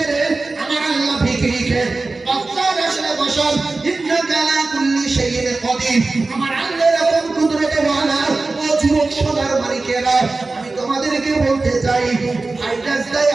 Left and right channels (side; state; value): left; quieter; 3.5 dB